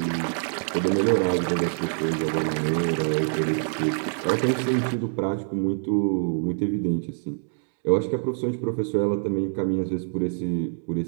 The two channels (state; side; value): silent; left; 59 dB below the other